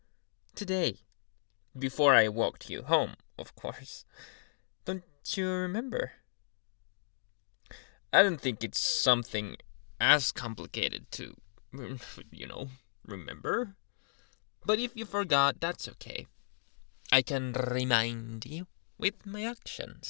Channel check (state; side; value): silent; right; digital silence